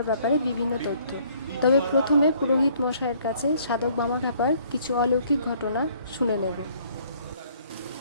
ব্যাপারে বিভিন্ন তথ্য। তবে প্রথমে পুরোহিত মশাইয়ের কাছে সাধক বামাখ্যাপার কিছু অলৌকিক ঘটনা শুনে নেব।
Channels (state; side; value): inverted; both; correlation -0.61